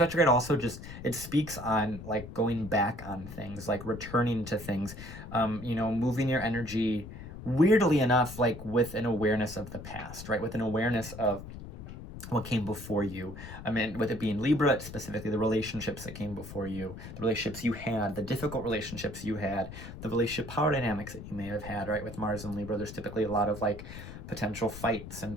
also just, it speaks on like going back on things, like returning to things, moving your energy, weirdly enough, like with an awareness of the past, right? With an awareness of what came before you. I mean, with it being Libra, it's specifically the relationships that came before you, the relationships you had, the difficult relationships you had, the relationship power dynamics that you may have had, right? With Mars and Libra, there's typically a lot of like potential fights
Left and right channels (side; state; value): left; noise; rumble, 12 dB below the sound